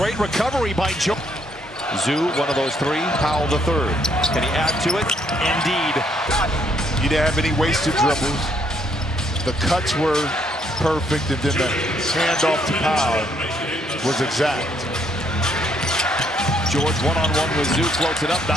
recovery by George. Zoo, one of those 3. Powell the 3rd. Can he add to it? Indeed. You didn't have any wasted dribbles. The cuts were perfect, and then the handoff to Powell was exact. George one-on-one with Zoo, floats it up,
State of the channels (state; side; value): normal; both; correlation 0.70